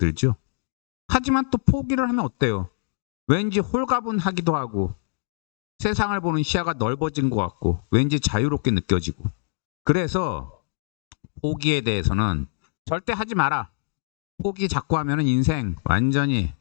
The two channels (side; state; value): right; silent; digital silence